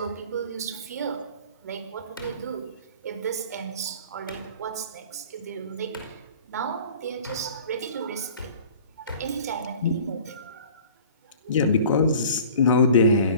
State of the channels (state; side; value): inverted; both; correlation -0.46